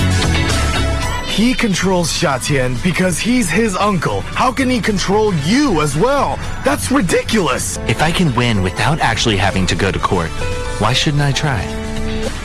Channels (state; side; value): identical; both; correlation 1.00